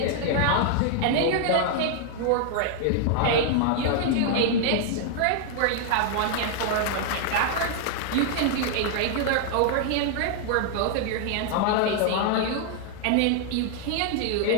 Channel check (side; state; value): both; different; correlation 0.00